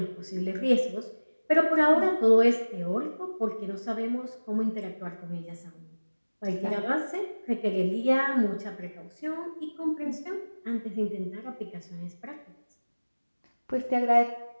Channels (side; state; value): both; inverted; correlation -1.00